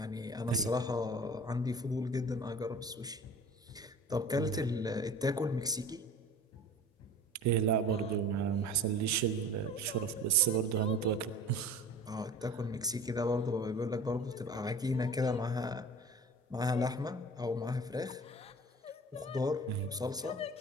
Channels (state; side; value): normal; both; correlation 0.41